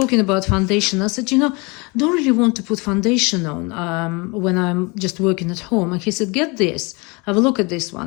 about foundation. I said, don't really want to put foundation on when I'm just working at home. And he said, get this, have a look at this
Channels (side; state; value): right; quieter; 28.2 dB